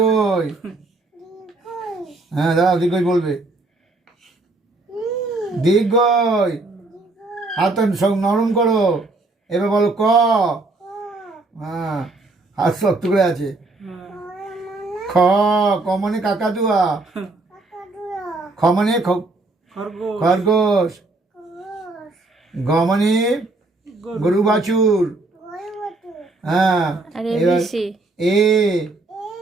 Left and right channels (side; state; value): left; quieter; 3.2 dB